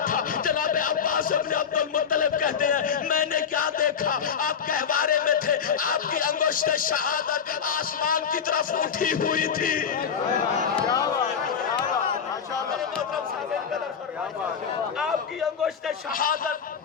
تھا. جناب عباس ابن عبد المطلب کہتے ہیں میں نے کیا دیکھا, آپ گہوارے میں تھے, آپ کی انگشت شہادت آسمان کی طرف اٹھی ہوئی تھی. آپ کی انگشت شہادت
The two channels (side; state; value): right; quieter; 7.1 dB